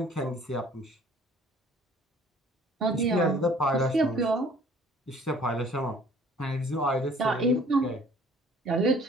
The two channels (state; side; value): normal; both; correlation 0.54